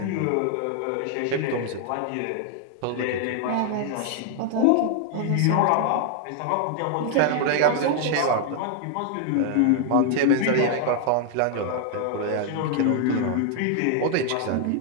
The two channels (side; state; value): both; different; correlation 0.00